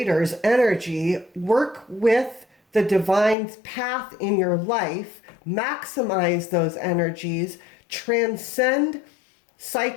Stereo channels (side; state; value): right; drops out; at 3.4 s